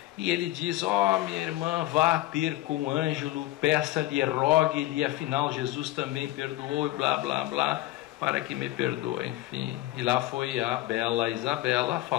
E ele diz: minha irmã, vá ter com o Ângelo, peça-lhe, rogue-lhe, afinal Jesus também perdoou, e blá blá blá, para que me perdoe, enfim. E lá foi a bela Isabela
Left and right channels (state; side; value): quieter; right; 16.4 dB